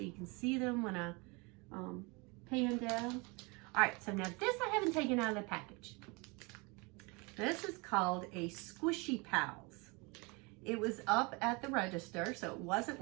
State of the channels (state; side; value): quieter; left; 28.4 dB